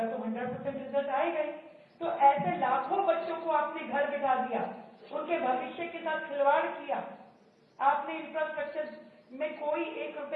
तो 100% रिजल्ट आएगा ही। तो ऐसे लाखों बच्चों को आपने घर बिठा दिया, उनके भविष्य के साथ खिलवाड़ किया। आपने इंफ्रास्ट्रक्चर में कोई 1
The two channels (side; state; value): both; identical; correlation 1.00